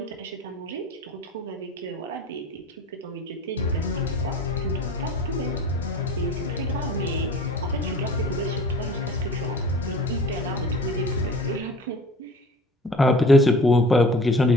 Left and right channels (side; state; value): both; normal; correlation 0.42